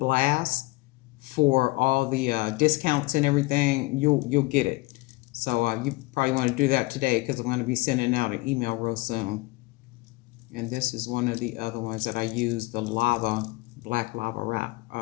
for all the discounts and everything, you'll get it. So you probably want to do that today, because I'm going to be sending out an email real soon. And this is one of the other ones that I used, the black lava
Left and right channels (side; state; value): right; quieter; 22.4 dB